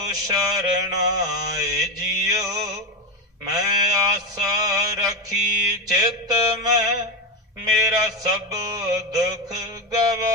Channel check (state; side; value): normal; both; correlation 0.14